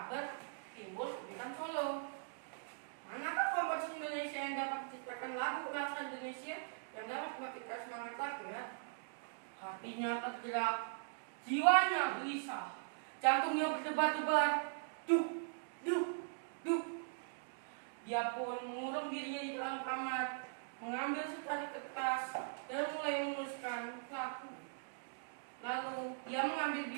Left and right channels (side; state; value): left; silent; digital silence